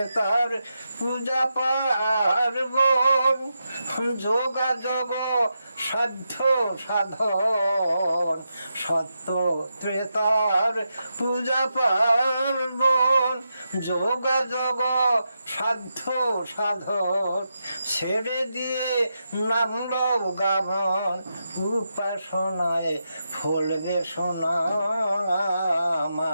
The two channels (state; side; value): inverted; both; correlation -0.86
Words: পূজা পার্বণ। যোগাযোগ সাধ্য সাধন, সত্য ত্রেতার পূজা পার্বণ। যোগাযোগ সাধ্য সাধন, ছেড়ে দিয়ে নামল গামন। উপাসনায় ফলবে সোনা।